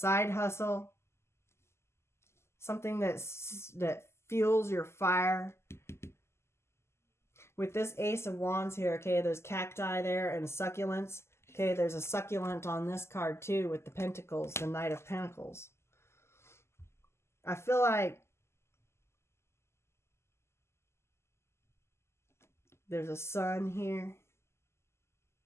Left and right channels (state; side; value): late; right; 0.13 ms